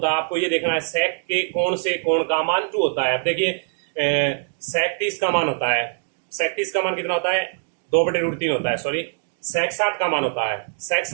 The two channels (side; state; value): left; silent; digital silence